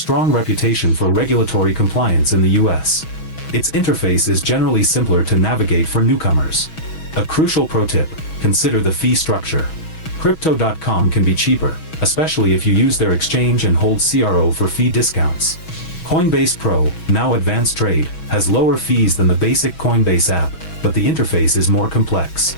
reputation for regulatory compliance in the US. Its interface is generally simpler to navigate for newcomers. A crucial pro tip: consider the fee structure. Crypto.com can be cheaper, especially if you use their exchange and hold CRO for fee discounts. Coinbase Pro, now Advanced Trade, has lower fees than the basic Coinbase app, but the interface is more complex.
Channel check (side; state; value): right; late; 6.2 ms